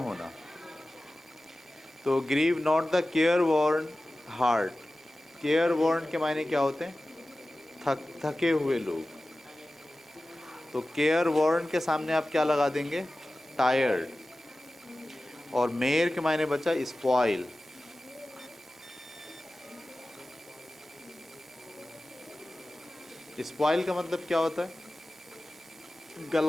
होना। तो grieve not the careworn heart. Careworn के मायने क्या होते हैं, थके हुए लोग। तो केयर वॉर्न के सामने आप क्या लगा देंगे, टायर्ड। और मेयर के मायने बचा स्पॉइल। स्पॉइल का मतलब क्या होता है,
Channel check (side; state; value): both; normal; correlation 0.96